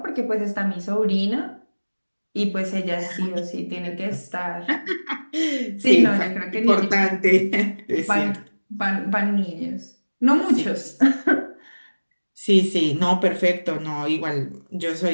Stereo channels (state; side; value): inverted; both; correlation -1.00